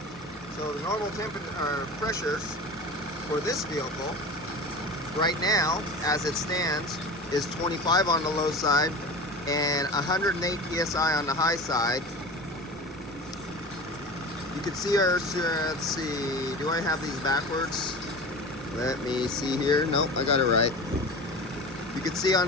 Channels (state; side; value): normal; both; correlation 0.33